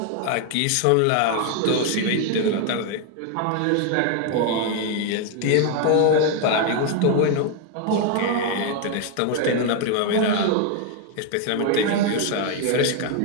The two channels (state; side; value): different; both; correlation 0.01